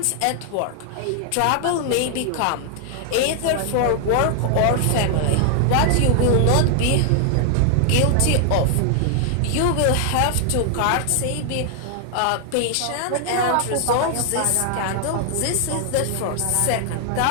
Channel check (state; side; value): different; both; correlation 0.00